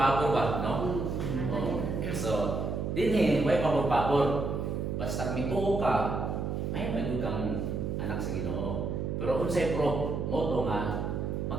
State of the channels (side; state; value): right; noise; hum, 2 dB below the sound